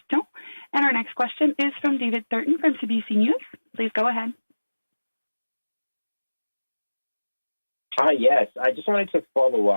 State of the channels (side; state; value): both; inverted; correlation -1.00